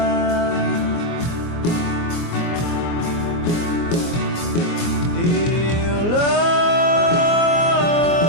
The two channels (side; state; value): right; late; 24 ms